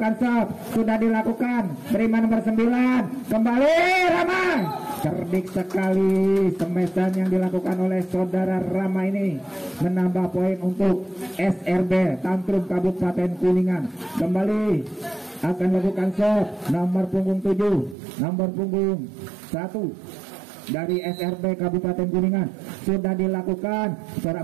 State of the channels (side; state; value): left; drops out; at 17.9 s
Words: serve, sudah dilakukan, terima nomor 9. Kembali Rama, cerdik sekali semesan yang dilakukan oleh Saudara Rama ini, menambah poin untuk SRB Tantrum Kabupaten Kuningan. Kembali akan lakukan serve nomor punggung 7, nomor punggung 1 dari SRB Kabupaten Kuningan. Sudah dilakukan,